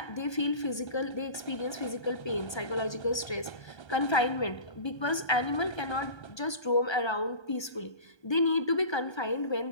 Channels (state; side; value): late; right; 1.3 ms